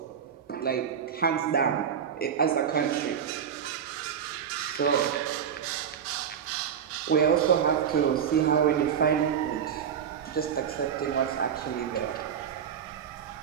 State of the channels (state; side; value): quieter; left; 8.0 dB